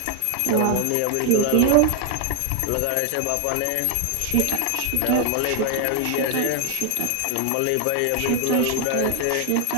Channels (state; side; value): different; both; correlation 0.00